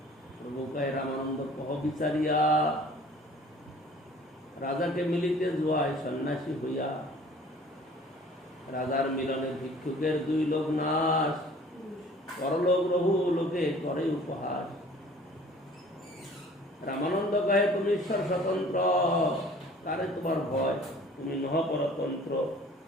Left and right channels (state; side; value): normal; both; correlation 0.50